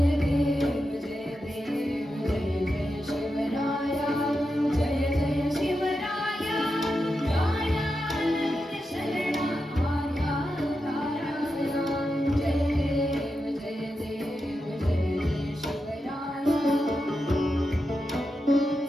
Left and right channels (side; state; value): both; normal; correlation 0.88